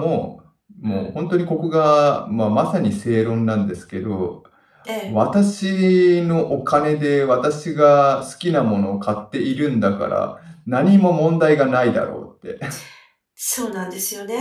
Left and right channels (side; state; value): both; identical; correlation 1.00